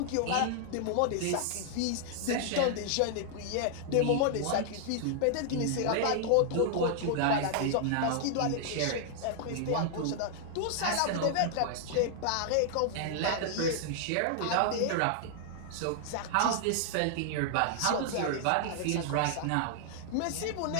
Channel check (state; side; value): different; both; correlation 0.00